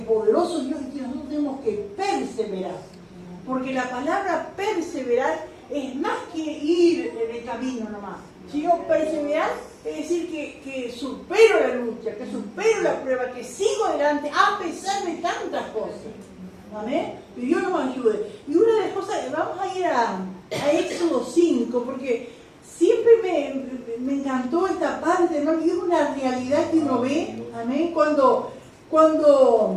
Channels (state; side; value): identical; both; correlation 1.00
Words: poderoso Dios y que nosotros tenemos que perseverar. Porque la palabra perseverar es más que ir en el camino nomás. Si yo perseverar, es decir que supero la lucha, que supero la prueba, que sigo adelante a pesar de tantas cosas. Amén. Que Dios nos ayude. Y una de las cosas, vamos a ir a Éxodo 5, porque siempre me encantó esta parte, ¿no? Y es una realidad que uno ve, amén, cuando